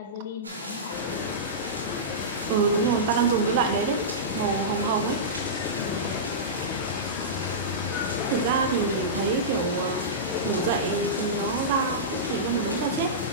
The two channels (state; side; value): normal; both; correlation -0.16